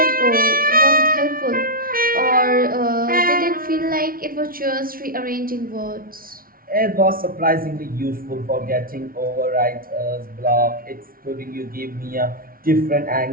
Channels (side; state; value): left; late; 0.42 ms